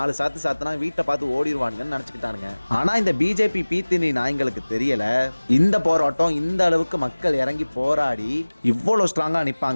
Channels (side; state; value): both; inverted; correlation -1.00